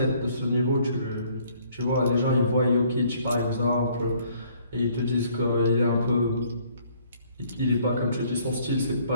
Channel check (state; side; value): inverted; both; correlation -0.62